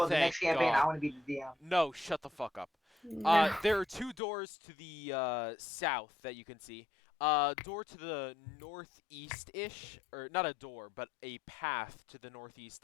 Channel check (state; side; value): drops out; right; at 4.2 s